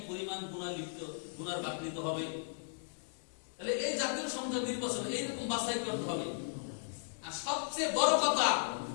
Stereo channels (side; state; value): right; silent; digital silence